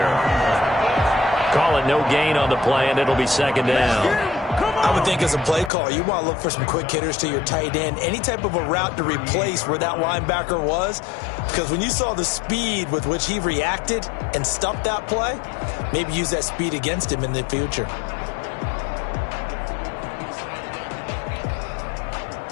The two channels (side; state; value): right; drops out; at 5.7 s